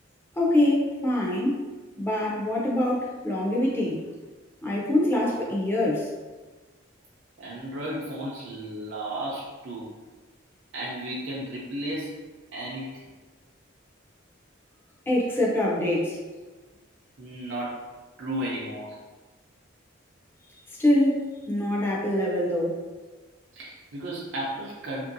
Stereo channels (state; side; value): normal; both; correlation 0.67